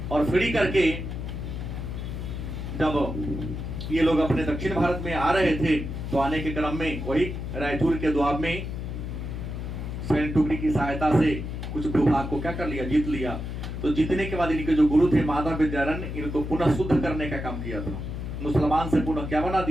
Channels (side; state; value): left; noise; hum, 5 dB below the sound